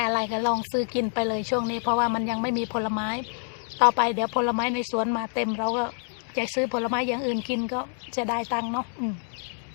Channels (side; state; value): right; silent; 58 dB below the other